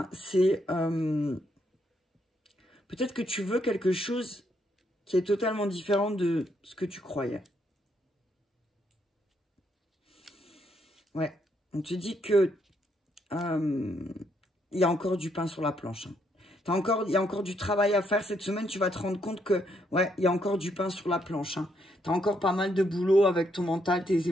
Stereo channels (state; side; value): normal; both; correlation 0.74